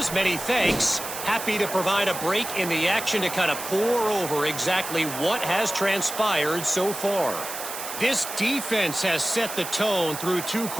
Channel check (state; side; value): noise; right; hiss, 8 dB below the sound